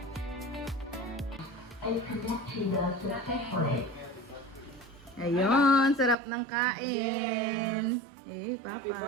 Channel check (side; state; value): left; drops out; at 6.2 s